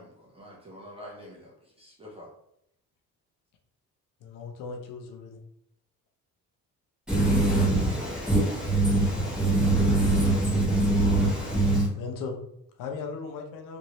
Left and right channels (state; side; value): normal; both; correlation 0.45